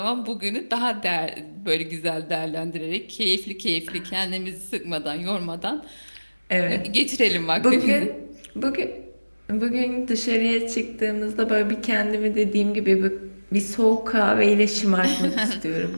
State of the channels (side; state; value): both; inverted; correlation -1.00